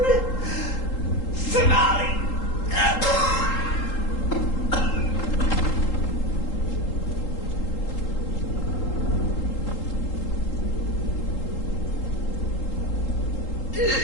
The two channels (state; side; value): late; right; 3.8 ms